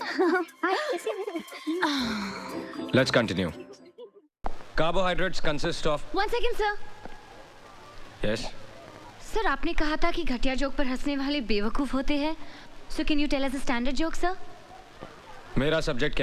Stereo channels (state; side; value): identical; both; correlation 1.00